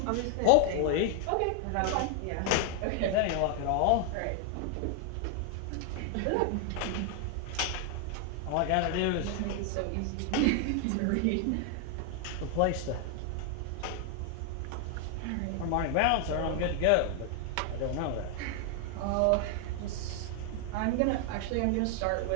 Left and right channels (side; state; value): both; different; correlation 0.00